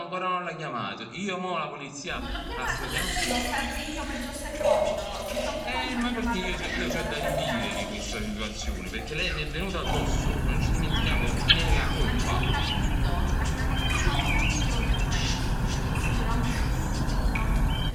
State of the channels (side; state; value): both; identical; correlation 1.00